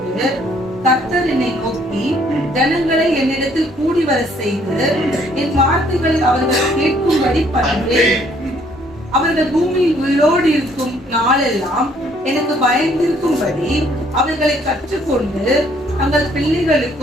கர்த்தர் என்னை நோக்கி ஜனங்களை என்னிடத்தில் கூடி வர செய்து என் வார்த்தைகளை அவர்கள் கேட்கும்படி பண்ணுவேன். அவர்கள் பூமியில் உயிரோடு இருக்கும் நாளெல்லாம் எனக்கு பயந்திருக்கும்படி அவர்களை கற்றுக்கொண்டு தங்கள்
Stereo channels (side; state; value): both; normal; correlation 0.64